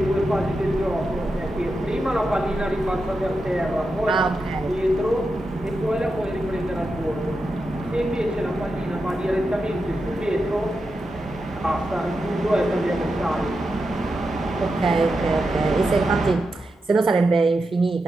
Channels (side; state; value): both; normal; correlation 0.88